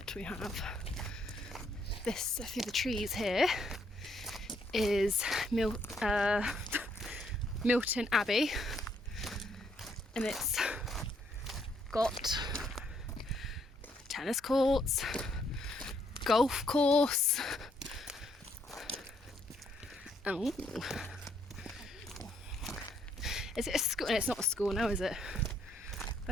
We have this through the trees here is Milton Abbey, and it's got tennis courts, golf course. Oh, is it a school? It's not a school now, is it?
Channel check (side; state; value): both; normal; correlation 0.71